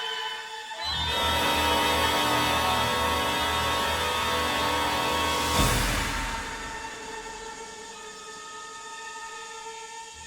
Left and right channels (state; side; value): identical; both; correlation 1.00